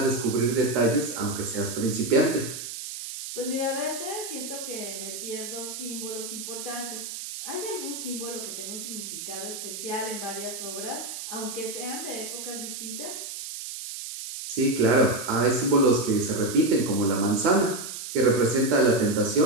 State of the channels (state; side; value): noise; right; hiss, 8 dB below the sound